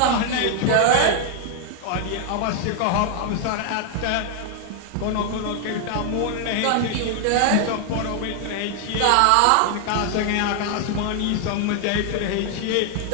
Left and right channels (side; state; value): both; different; correlation 0.00